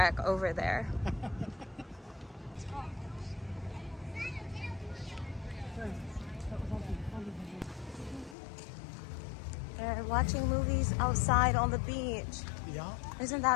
over there. And watching movies outside on the beach. Yeah, Isn't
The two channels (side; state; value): right; drops out; at 8.3 s